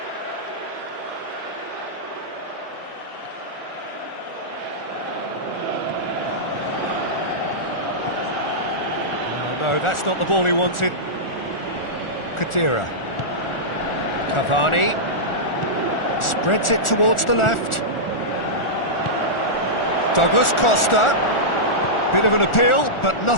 No, that's not the ball he wanted. Khedira. Cavani. Spreads it towards the left. Douglas Costa. Bit of an appeal, but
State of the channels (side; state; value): right; late; 1.4 ms